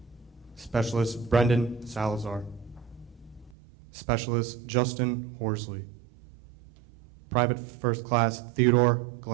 Specialist Brendan Salazar. Specialist Justin Horsley. Private First Class Theodore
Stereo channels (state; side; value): drops out; left; at 3.6 s